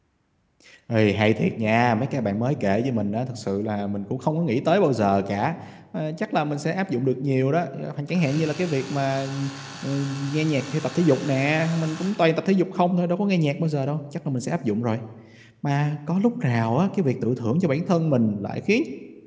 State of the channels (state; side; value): identical; both; correlation 1.00